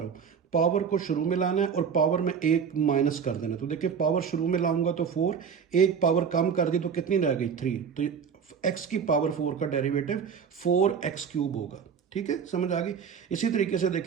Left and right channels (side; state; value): left; quieter; 6.8 dB